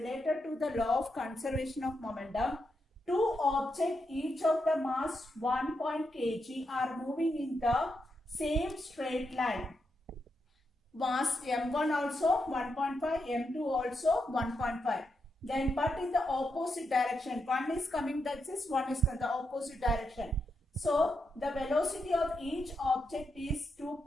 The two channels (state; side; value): normal; both; correlation 0.84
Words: to the law of conservation of momentum. Two objects, each of the mass 1 kg, are moving in the same straight line. Mass m1 also 1.5, m2 also 1.5. Then but in the opposite direction. One is coming like this, one is in the opposite direction. So the velocity of each object is